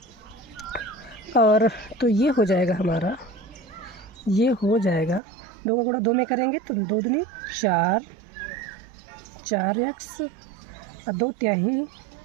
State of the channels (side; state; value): left; drops out; at 5.2 s